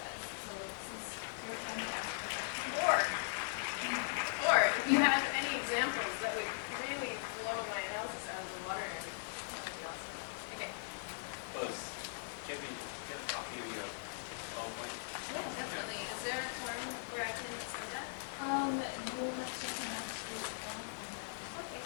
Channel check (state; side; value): silent; right; digital silence